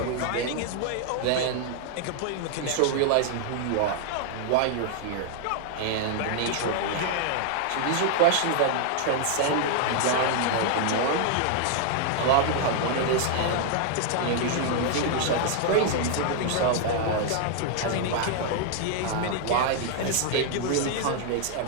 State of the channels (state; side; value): different; both; correlation 0.00